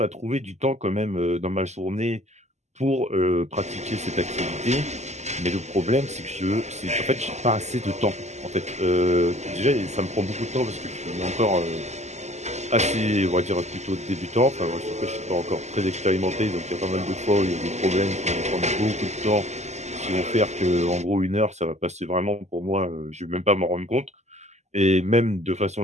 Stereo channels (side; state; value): left; late; 0.33 ms